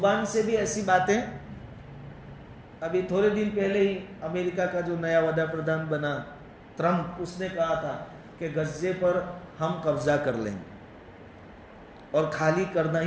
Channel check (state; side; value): identical; both; correlation 1.00